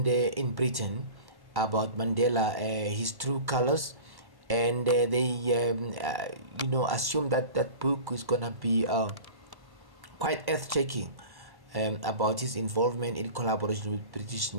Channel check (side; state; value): left; late; 1.1 ms